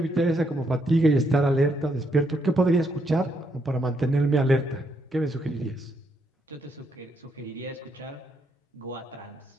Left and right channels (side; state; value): both; normal; correlation 0.76